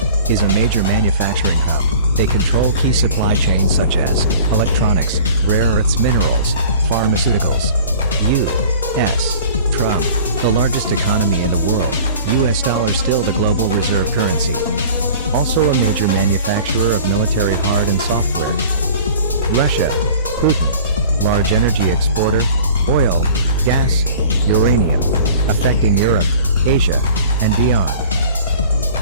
is a major manufacturing hub. They control key supply chains such as electronics, rare earths minerals, pharmaceuticals. U.S. Trump, the largest economy in the world, US dollar still the global reserve currency. Also a major manufacturer of military hard and software. Russia, Putin, large energy exporter, oil, gas, uranium, affecting Europe, Asia, and beyond.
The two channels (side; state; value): both; inverted; correlation -0.44